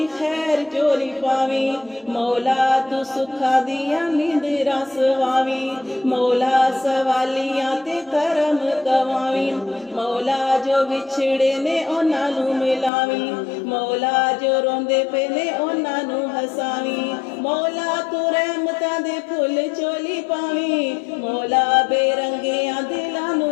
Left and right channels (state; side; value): drops out; right; at 12.9 s